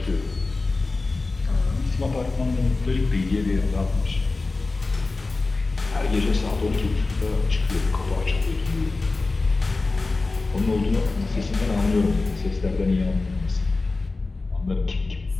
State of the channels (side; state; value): right; quieter; 3.5 dB